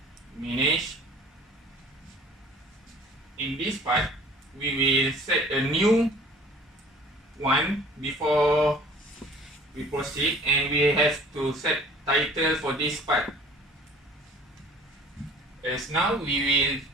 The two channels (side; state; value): both; normal; correlation 0.48